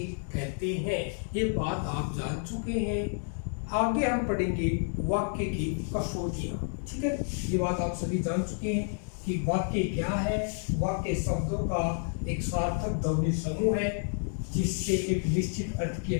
कहते हैं। ये बात आप जान चुके हैं। आगे हम पढ़ेंगे वाक्य की कसौटियां। ठीक है, ये बात आप सभी जान चुके हैं कि वाक्य क्या है। वाक्य शब्दों का एक सार्थक ध्वनि समूह है जिससे एक निश्चित अर्थ की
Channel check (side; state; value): right; silent; 58 dB below the other